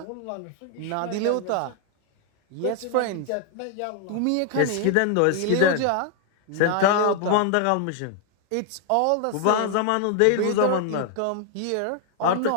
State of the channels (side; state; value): both; different; correlation 0.00